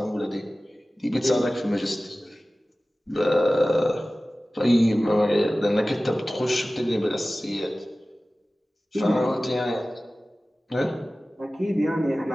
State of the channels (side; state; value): both; normal; correlation 0.97